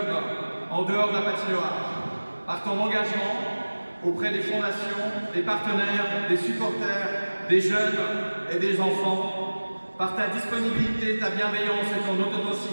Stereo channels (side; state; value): both; inverted; correlation -1.00